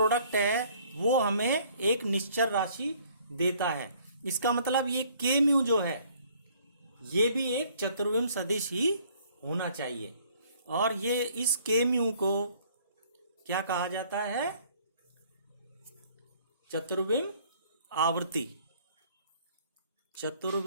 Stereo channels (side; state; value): both; inverted; correlation -0.59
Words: है वो हमें एक निश्चर राशि देता है। इसका मतलब ये के म्यू जो है ये भी एक चतुर्विम सदिश ही होना चाहिए। और ये इस के म्यू को क्या कहा जाता है, चतुर्विम आवृत्ति,